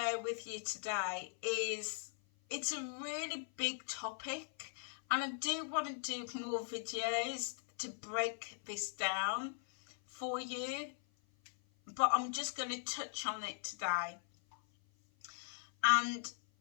with you today is, it's a really big topic, and I do want to do more videos to break this down for you, but I'm just going to touch on it today. And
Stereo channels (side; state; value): right; silent; 51 dB below the other